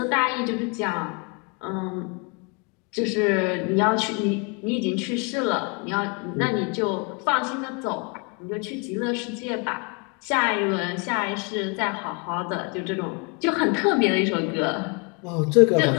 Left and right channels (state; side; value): quieter; right; 33.2 dB